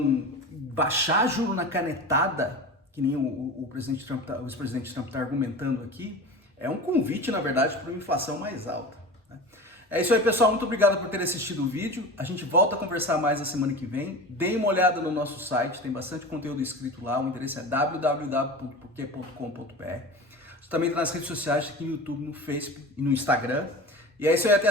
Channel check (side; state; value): both; normal; correlation 0.32